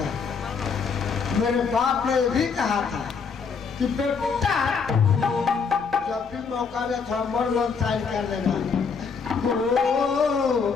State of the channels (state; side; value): quieter; right; 5.6 dB